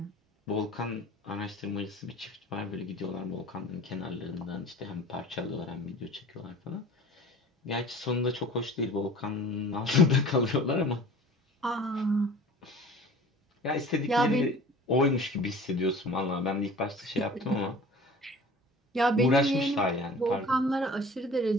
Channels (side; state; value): both; normal; correlation 0.43